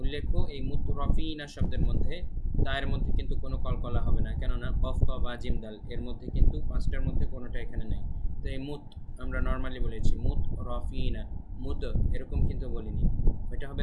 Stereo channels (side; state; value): both; identical; correlation 1.00